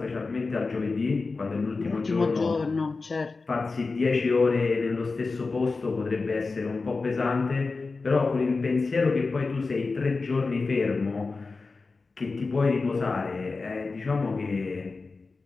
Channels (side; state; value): right; quieter; 4.0 dB